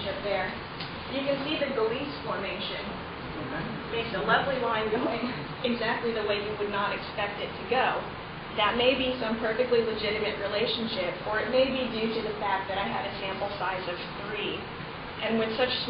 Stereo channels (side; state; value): both; identical; correlation 1.00